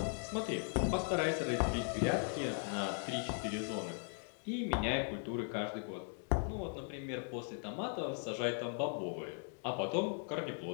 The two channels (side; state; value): right; silent; 52 dB below the other